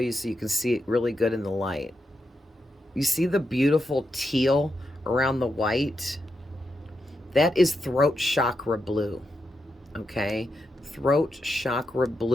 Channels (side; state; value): both; normal; correlation 0.85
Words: so you can see it really good in the light. You see the beautiful teal around the white? That is throat chakra blue, okay? Throat chakra